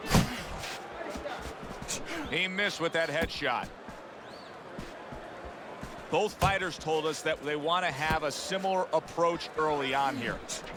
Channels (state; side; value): identical; both; correlation 1.00